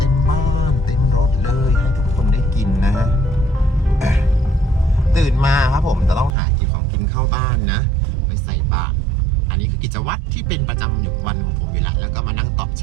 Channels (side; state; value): left; drops out; at 6.3 s